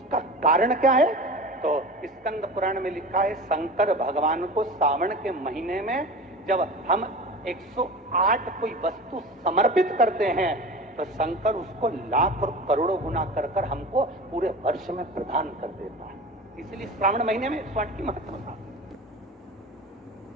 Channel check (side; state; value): both; normal; correlation 0.33